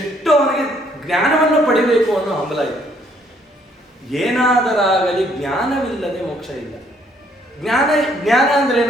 ಅವನಿಗೆ ಜ್ಞಾನವನ್ನು ಪಡಿಬೇಕು ಅನ್ನೋ ಹಂಬಲ ಇತ್ತು. ಏನಾದರಾಗಲಿ ಜ್ಞಾನವಿಲ್ಲದೆ ಮೋಕ್ಷ ಇಲ್ಲ. ಜ್ಞಾನ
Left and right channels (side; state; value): both; normal; correlation 0.66